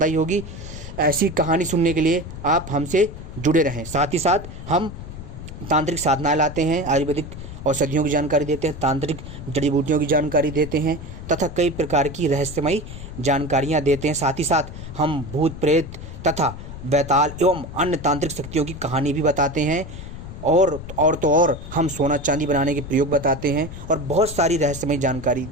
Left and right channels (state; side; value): noise; left; rumble, 11 dB below the sound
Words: आई होगी। ऐसी कहानी सुनने के लिए आप हमसे जुड़े रहें। साथ ही साथ हम तांत्रिक साधनाएं लाते हैं, आयुर्वेदिक औषधियों की जानकारी देते हैं, तांत्रिक जड़ी बूटियों की जानकारी देते हैं तथा कई प्रकार की रहस्यमयी जानकारियां देते हैं। साथ ही साथ हम भूत प्रेत तथा बैताल एवं अन्य तांत्रिक शक्तियों की कहानी भी बताते हैं और हम सोना चांदी बनाने के प्रयोग बताते हैं और बहुत सारी रहस्यमयी जानकारी